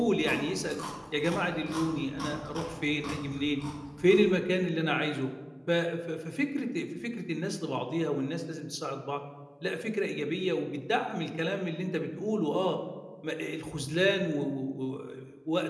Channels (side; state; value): both; identical; correlation 1.00